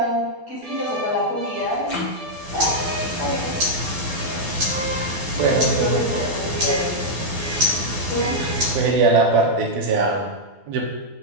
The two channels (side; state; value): left; late; 12 ms